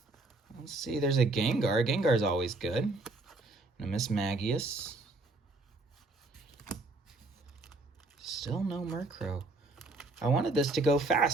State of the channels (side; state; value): left; quieter; 3.1 dB